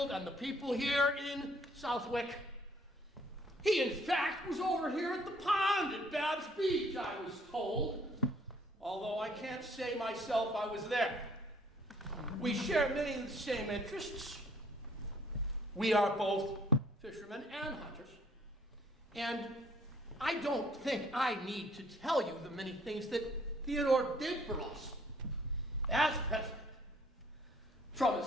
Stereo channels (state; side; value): normal; both; correlation 0.61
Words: and the people here in Southwick. He, in fact, was over here at the pond at Babb's Beach, I was told, although I can't say myself I was there. We share many of the same interests. We are both fishermen and hunters. And I don't think I need to tell you the many things that Theodore did for us as president. From